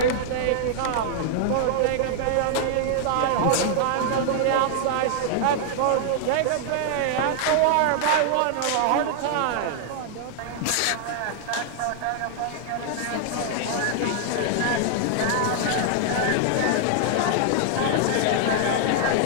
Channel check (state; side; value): different; both; correlation -0.01